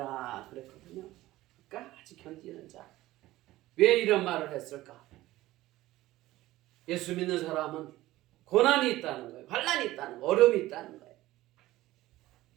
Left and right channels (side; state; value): left; quieter; 16.7 dB